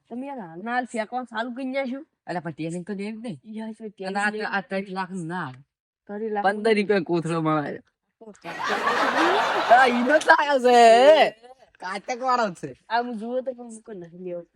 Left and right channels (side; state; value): both; identical; correlation 1.00